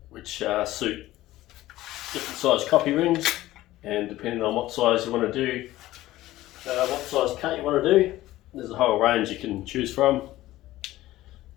which suit different size copy rings, and depending on what size you want to do, what size cut you want to do, there's a whole range you can choose from.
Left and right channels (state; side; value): quieter; right; 16.1 dB